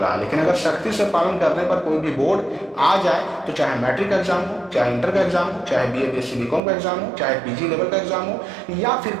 है। लेकिन अगर सख्ती से पालन करने पर कोई भी बोर्ड आ जाए, तो चाहे मैट्रिक का एग्जाम हो, चाहे इंटर का एग्जाम हो, चाहे बीए बीएससी बीकॉम का एग्जाम हो, चाहे पीजी लेवल का एग्जाम हो, या फिर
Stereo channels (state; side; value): drops out; left; at 6.6 s